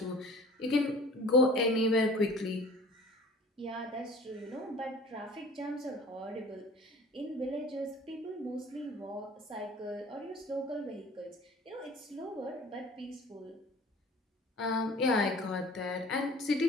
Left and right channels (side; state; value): both; normal; correlation 0.46